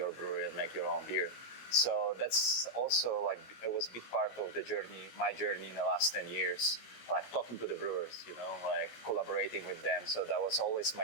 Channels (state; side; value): late; right; 17 ms